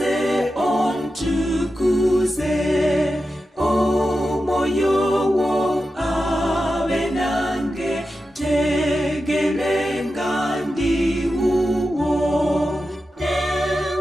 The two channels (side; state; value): both; normal; correlation 0.91